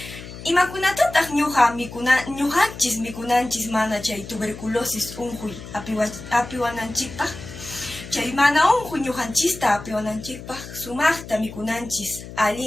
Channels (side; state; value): left; noise; hum, 13 dB below the sound